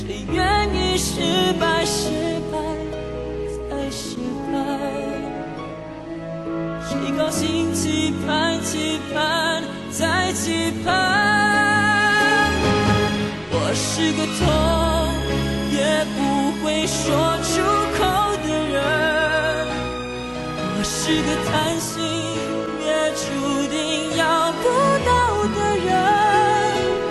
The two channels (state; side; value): identical; both; correlation 1.00